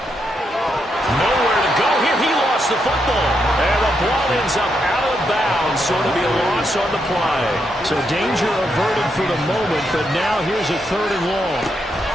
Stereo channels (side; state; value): both; normal; correlation 0.80